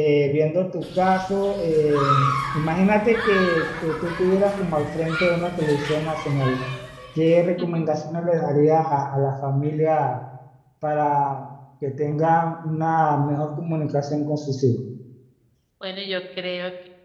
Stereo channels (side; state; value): both; identical; correlation 1.00